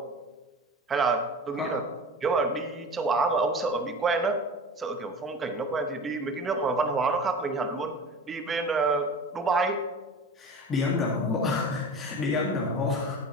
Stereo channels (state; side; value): normal; both; correlation 0.34